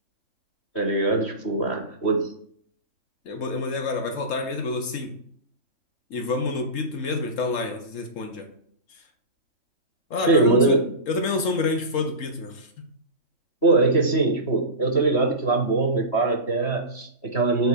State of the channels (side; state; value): right; late; 3.7 ms